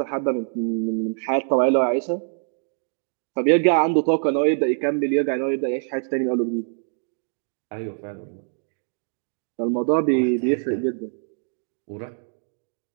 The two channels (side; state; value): left; silent; 62 dB below the other